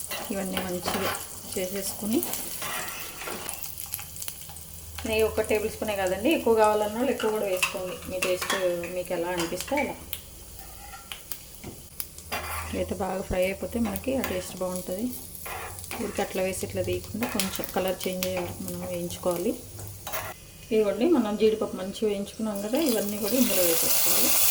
ఇవన్నీ మంచిగా చేసేసుకుని నెయ్యి 1 టేబుల్ స్పూనే కదండి, ఎక్కువ కావాలన్న వాళ్ళు ఎక్కువ కూడా వేసుకోండి, మీ టేస్ట్ మీకు ఎలా అనిపిస్తే అలా. అయితే బాగా ఫ్రై అయిపోతే మనకి ఆ టేస్ట్ బాగుంటుంది. ఊరికి అట్లా వేసి ఇట్లా తీయకుండా కొంచెం కలర్ చేంజ్ అయ్యే వరకు మనం వేయించుకోవాలి. ఇవ్వండి మనం జీడిపప్పు మంచిగా వేయించుకున్నాం కదా, ఇవన్నీ కూడా ఇందులో వేసేసుకోవాలి.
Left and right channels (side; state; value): both; identical; correlation 1.00